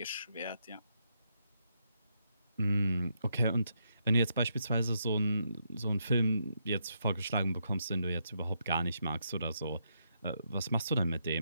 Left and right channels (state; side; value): inverted; both; correlation -0.79